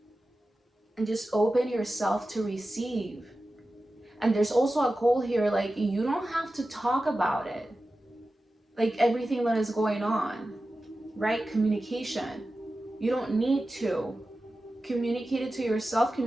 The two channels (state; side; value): normal; both; correlation 0.94